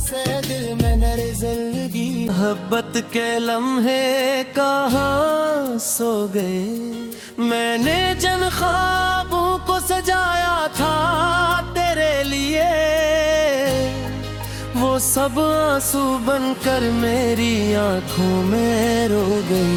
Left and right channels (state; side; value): identical; both; correlation 1.00